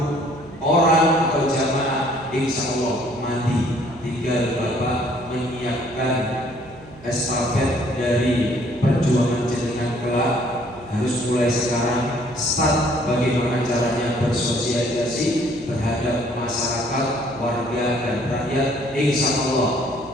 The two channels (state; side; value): noise; right; hum, 22 dB below the sound